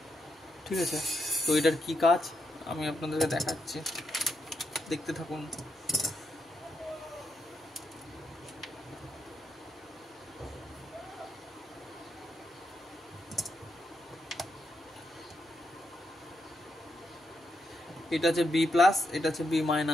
ঠিক আছে, তো এটার কি কাজ আমি আপনাদেরকে দেখাচ্ছি, দেখতে থাকুন। এটা হচ্ছে বি প্লাস, এটা হচ্ছে বি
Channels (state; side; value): normal; both; correlation 0.82